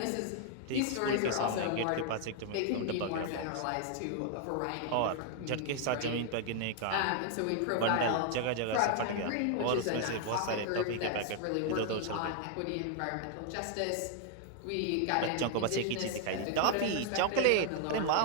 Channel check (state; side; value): different; both; correlation 0.00